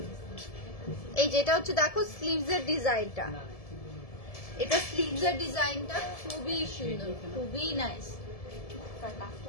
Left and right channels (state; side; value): late; right; 1.7 ms